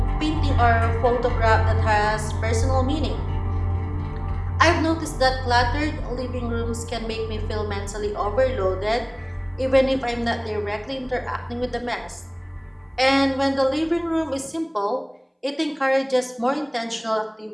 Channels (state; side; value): identical; both; correlation 1.00